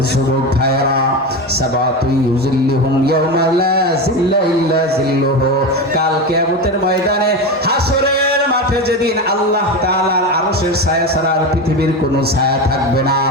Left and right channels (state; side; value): normal; both; correlation 0.20